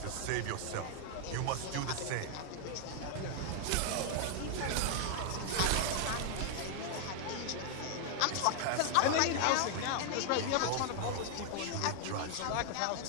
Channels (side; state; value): both; different; correlation 0.00